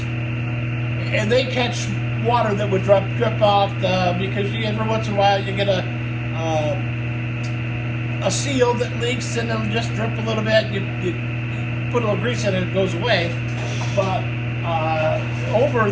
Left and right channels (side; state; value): both; identical; correlation 1.00